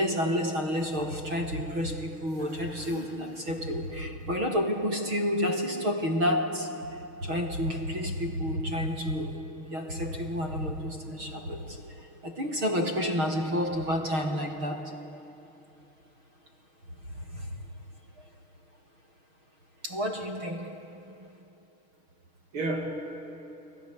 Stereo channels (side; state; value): left; late; 6.4 ms